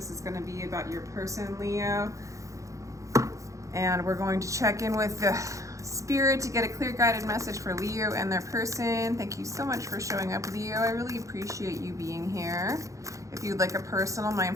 is going to be about your person, Leo. And we're going to check in with the spirit to get a clear guided message for Leo and their person. Thank you so much for showing up, Leo. I really appreciate you being here. If you'd like a personal, my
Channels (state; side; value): late; left; 0.15 ms